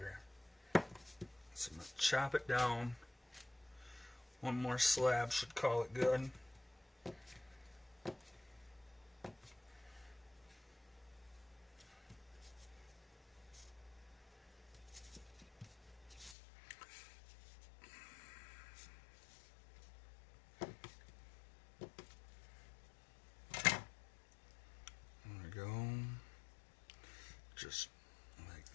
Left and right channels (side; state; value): right; drops out; at 16.4 s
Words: So I'm going to chop it down. 1 more slab should call it good. There we go. Just like